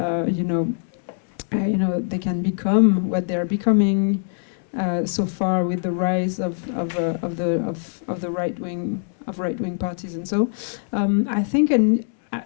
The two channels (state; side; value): silent; right; 64 dB below the other